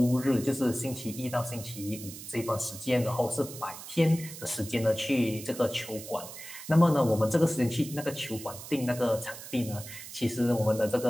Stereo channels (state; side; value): noise; right; hiss, 13 dB below the sound